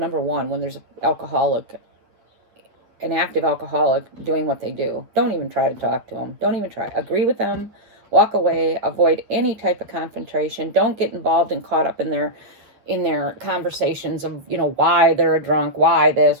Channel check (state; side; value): late; left; 9.7 ms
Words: one, when there's an active alcoholic doing what they do, don't even try to talk to them. Don't even try. Agree with them. Walk away. Avoid any type of confrontation. Don't get involved and caught up in their conversations of, why they're a drunk, why